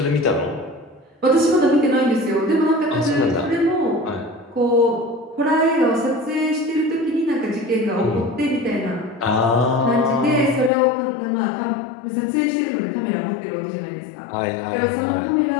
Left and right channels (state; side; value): drops out; right; at 10.7 s